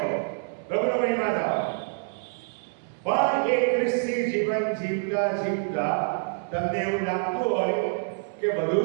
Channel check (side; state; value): left; silent; digital silence